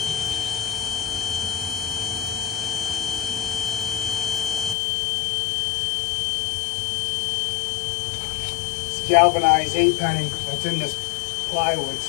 Galvanized 8-penny that's in this plywood,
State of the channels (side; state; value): right; drops out; at 4.8 s